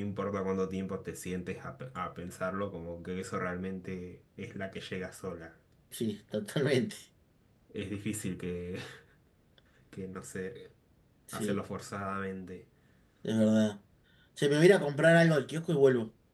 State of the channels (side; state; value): both; identical; correlation 1.00